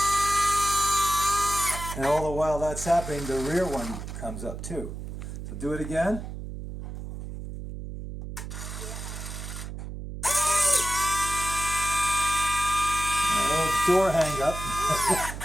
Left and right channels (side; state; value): right; noise; hum, 8 dB below the sound